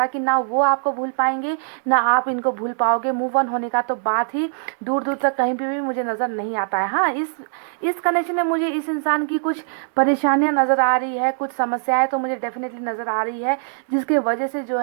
है कि ना वो आपको भूल पाएंगे ना आप इनको भूल पाओगे। मूव ऑन होने का तो बात ही दूर दूर तक कहीं पे भी मुझे नज़र नहीं आता है। हाँ, इस कनेक्शन में मुझे इस इंसान की कुछ परेशानियां नज़र आ रही है, कुछ समस्याएं तो मुझे डेफिनेटली नज़र आ रही है, जिसके वजह से जो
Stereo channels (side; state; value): left; silent; digital silence